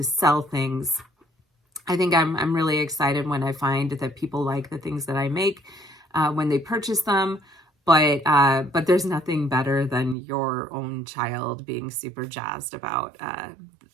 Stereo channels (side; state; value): left; drops out; at 10.2 s